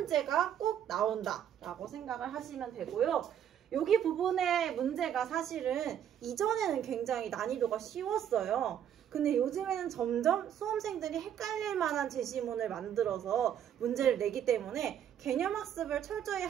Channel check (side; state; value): left; quieter; 9.8 dB